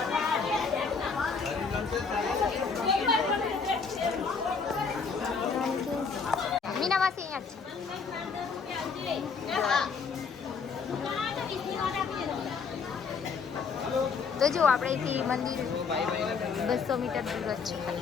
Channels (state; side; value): quieter; right; 5.3 dB